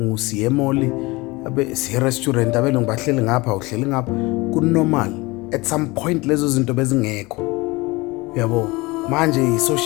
siye emall, siye restaurant, abelungu bahleli ngapha, uhleli ngapha, kunormal. At some point lezo zinto bezingekho, uyabo. Manje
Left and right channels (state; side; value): quieter; right; 23.1 dB